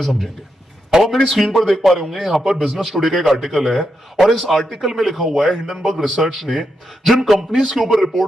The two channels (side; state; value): both; normal; correlation 0.84